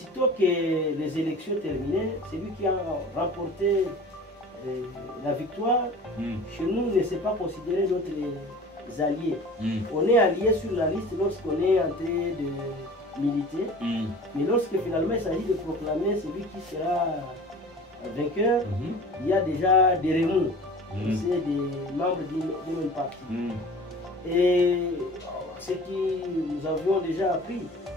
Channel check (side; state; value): both; normal; correlation 0.42